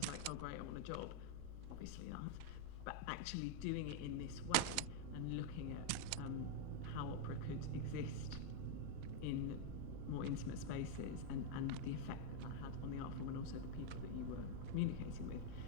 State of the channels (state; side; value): different; both; correlation 0.00